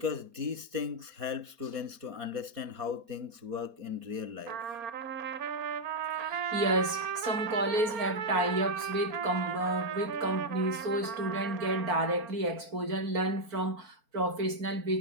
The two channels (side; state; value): left; late; 4.6 ms